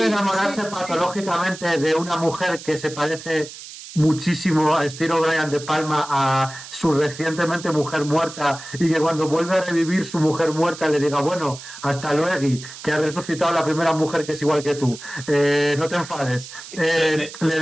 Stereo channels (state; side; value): noise; right; hiss, 14 dB below the sound